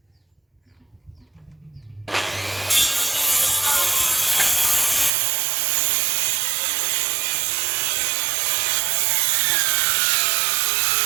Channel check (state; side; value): drops out; left; at 5.1 s